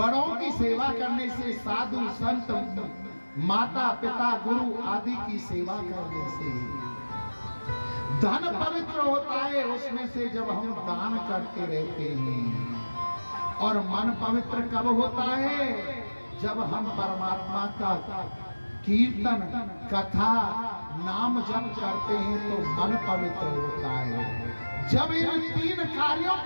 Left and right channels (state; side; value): inverted; both; correlation -1.00